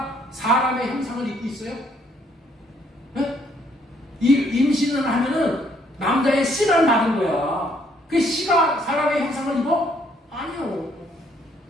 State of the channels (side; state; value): both; normal; correlation 0.67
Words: 사람의 형상을 입고 있어요? 예? 이 임신을 하면은 남자의 씨를 받은 거야. 그 씨가 사람의 형상을 입어? 아니요.